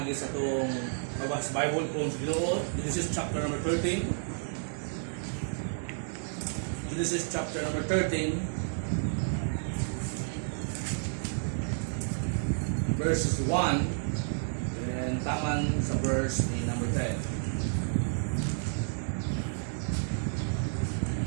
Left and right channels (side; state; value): left; silent; digital silence